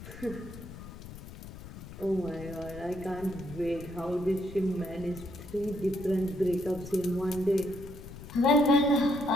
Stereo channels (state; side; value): noise; left; rumble, 13 dB below the sound